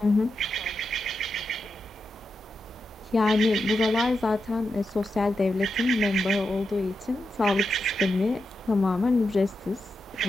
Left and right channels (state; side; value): normal; both; correlation 0.87